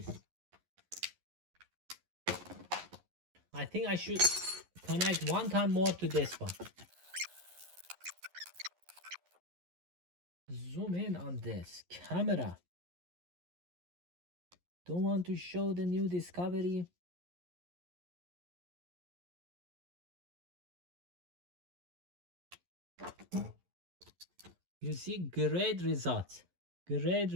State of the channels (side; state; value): left; late; 11 ms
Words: I think I should connect one time more to this one. Zoom in on this camera. Don't want to show the new discovery. You see, great results. Great